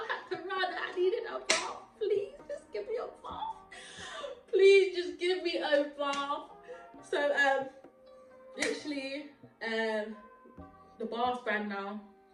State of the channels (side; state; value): both; identical; correlation 1.00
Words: had to run. I needed a bath. Please just give me a bath. Please just give me a bath. So literally the bath ran now,